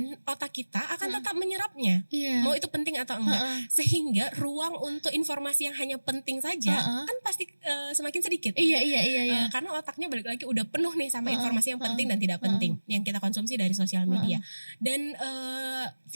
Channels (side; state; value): both; inverted; correlation -1.00